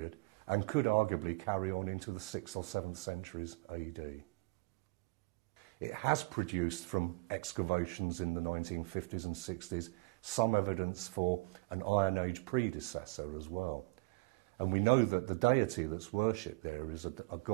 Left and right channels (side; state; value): left; quieter; 25.7 dB